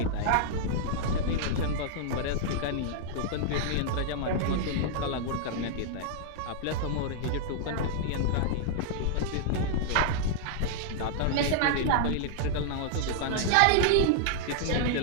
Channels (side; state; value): both; different; correlation -0.01